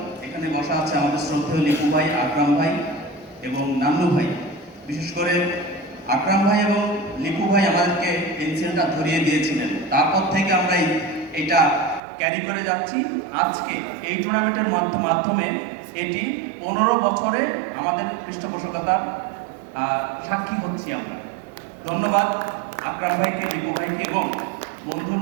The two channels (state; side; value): drops out; left; at 12.0 s